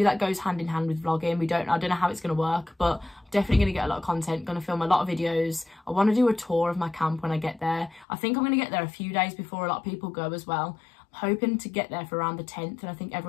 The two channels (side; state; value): right; drops out; at 8.1 s